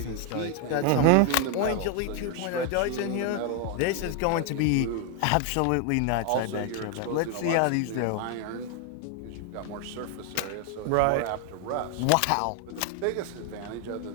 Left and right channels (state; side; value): different; both; correlation 0.01